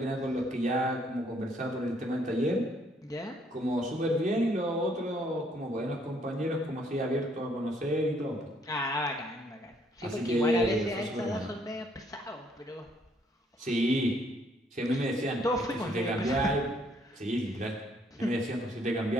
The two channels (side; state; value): both; normal; correlation 0.67